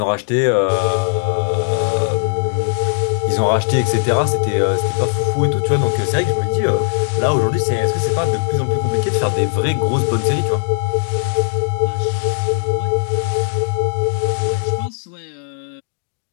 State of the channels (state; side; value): silent; right; digital silence